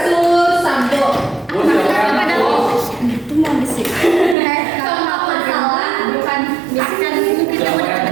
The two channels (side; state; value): left; drops out; at 4.4 s